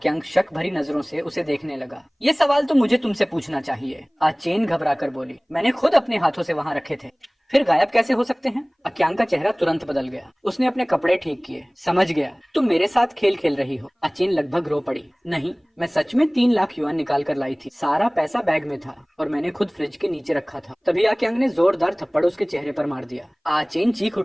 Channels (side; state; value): both; identical; correlation 1.00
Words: शक भरी नजरों से उसे देखने लगा। ये सवाल तो मुझे तुमसे पूछना चाहिए। आचेन घबराकर बोली, मैंने खुद अपने हाथों से वहाँ रखे थे, फिर गायब कैसे हो सकते हैं? आक्यांग का चेहरा तुरंत बदल गया। उसने अपने कपड़े ठीक किए। समझ गया, तुम मेरे साथ खेल खेल रही हो। आचेन लगभग रो पड़ी। नहीं, मैं सच में 3 लाख युआन निकाल कर लाई थी। सारा पैसा बैग में था और मैंने खुद फ्रिज के नीचे रखा था। तभी आक्यांग ने जोरदार थप्पड़ उसके चेहरे पर मार दिया। आचेन चीख